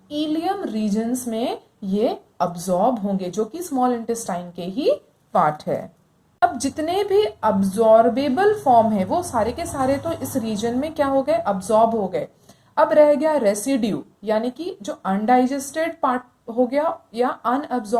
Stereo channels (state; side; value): identical; both; correlation 1.00